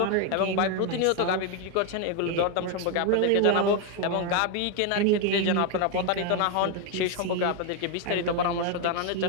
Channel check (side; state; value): both; different; correlation 0.01